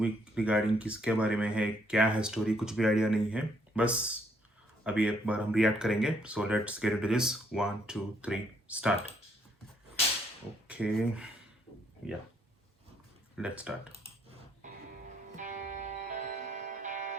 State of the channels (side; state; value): both; normal; correlation 0.69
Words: regarding किसके बारे में है, क्या है स्टोरी, कुछ भी आइडिया नहीं है. बस अभी एक बार हम रिएक्ट करेंगे. So let's get into this. 1 2 3 start. Okay, या लेट्स स्टार्ट.